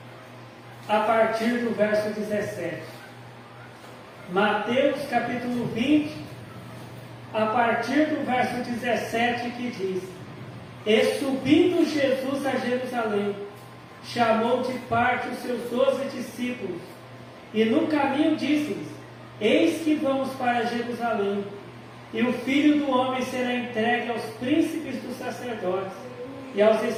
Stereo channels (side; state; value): both; identical; correlation 1.00